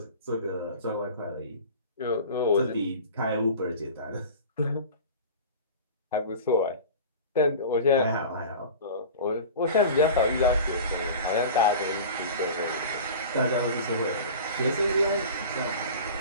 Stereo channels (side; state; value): both; inverted; correlation -0.36